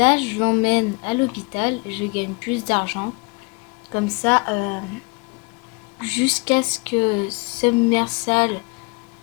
je l'emmène à l'hôpital, je gagne plus d'argent? Comme ça, jusqu'à ce que Submersal,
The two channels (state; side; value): quieter; right; 29.6 dB